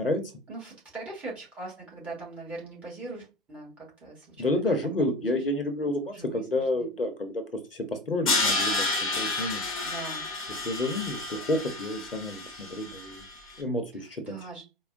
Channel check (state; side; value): normal; both; correlation 0.34